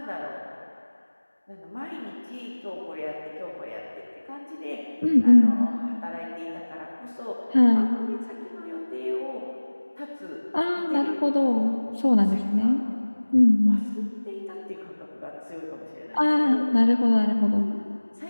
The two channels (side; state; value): both; inverted; correlation -1.00